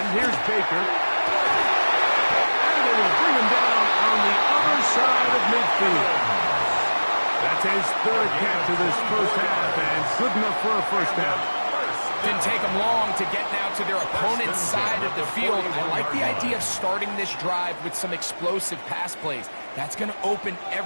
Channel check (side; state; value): both; inverted; correlation -1.00